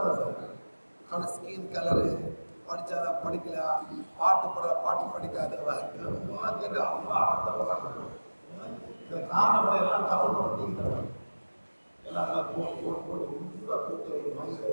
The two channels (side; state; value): both; inverted; correlation -1.00